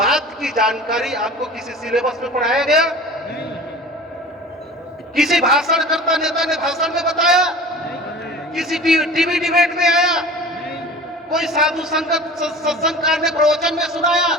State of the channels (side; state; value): both; normal; correlation 0.40